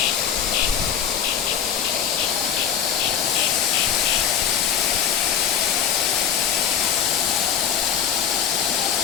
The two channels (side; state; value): right; quieter; 8.3 dB